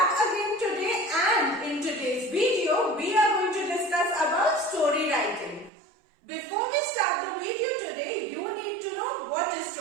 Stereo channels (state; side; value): drops out; left; at 5.7 s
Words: again today, and in today's video we are going to discuss about story writing. Before we start the video today, you need to know what is